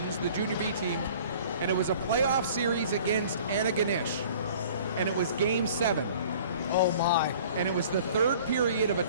the Junior B team, and it was a playoff series against Antigonish, and it was Game 7. Oh my! And it was the 3rd period of a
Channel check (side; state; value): both; inverted; correlation -0.49